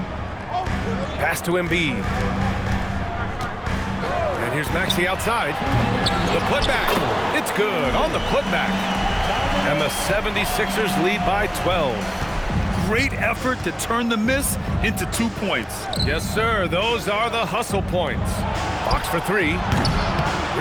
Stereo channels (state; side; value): identical; both; correlation 1.00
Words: Pass to Embiid. And here's Maxey outside. The putback. It's good on the putback. And the 76ers lead by 12. Great effort to turn the miss into 2 points. Yes, sir. Those are the hustle points. Fox for 3.